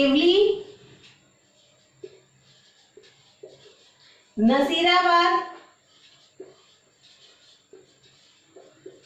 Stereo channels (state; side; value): identical; both; correlation 1.00